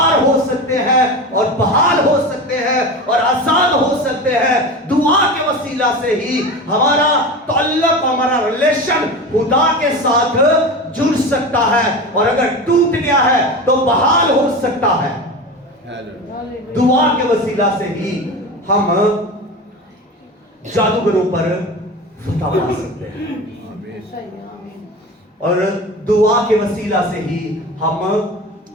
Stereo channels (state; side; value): normal; both; correlation 0.28